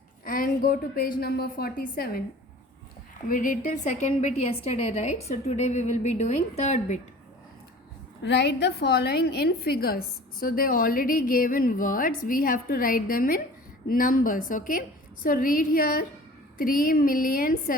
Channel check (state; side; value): normal; both; correlation 0.44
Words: and go to page number 47. We did till second bit yesterday, right? So today we will be doing third bit. Write the following in figures. So they already gave in words. We have to write them in numbers, okay? So read here